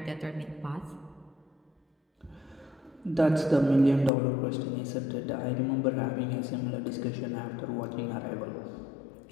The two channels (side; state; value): right; drops out; at 4.1 s